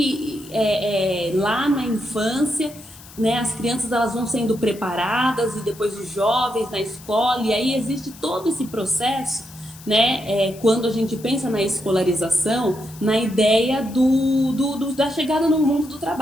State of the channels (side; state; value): left; noise; hiss, 20 dB below the sound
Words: lá na infância, né, as crianças elas vão sendo preparadas e depois os jovens na escola, e aí existe todo esse processo, né, quando a gente pensa na escolarização, na ideia da chegada no mundo do